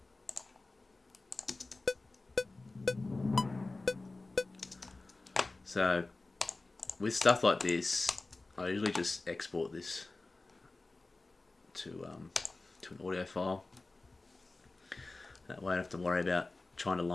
So with stuff like this, I usually just export this to an audio file. That way I don't have to worry about trying to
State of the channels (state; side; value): quieter; right; 3.3 dB